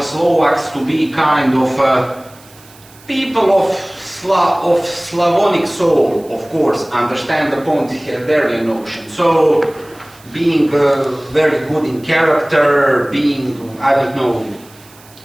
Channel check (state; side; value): noise; right; hiss, 25 dB below the sound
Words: Slovaks to be kind of people of Slavonic soul, of course, understand the Ponty-Herderian notion. So, being very good in character, being, I don't know,